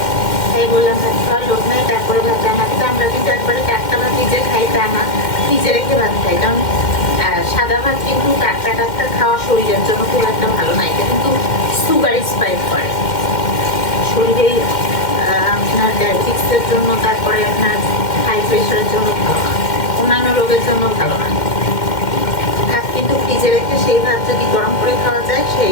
ভাই বললাম ভাত খাওয়ার লোক নাই, তারপরে ভাত রান্না করতে। আমরা কিন্তু একবারে টাটকা ভাত নিজে খাই তা না, ফ্রিজে রেখে ভাত খাই। কারণ সাদা ভাত কিন্তু টাটকা টাটকা খাওয়া শরীরের জন্য খুব একটা ভালো না, এটা কিন্তু সুগার স্পাইক করে শরীরে। আপনার ডায়াবেটিক্সের জন্য, তারপরে আপনার হাই প্রেশারের জন্য ভালো না, অন্যান্য রোগের জন্য ভালো না। ভাত কিন্তু ফ্রিজে রেখে সেই ভাত যদি গরম করে খাওয়া যায়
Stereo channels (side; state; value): right; late; 2.1 ms